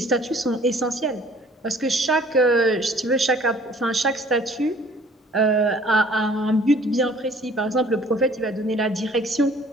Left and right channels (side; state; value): both; normal; correlation 0.54